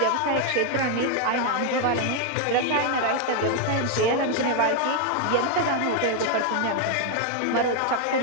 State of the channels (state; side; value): different; both; correlation 0.00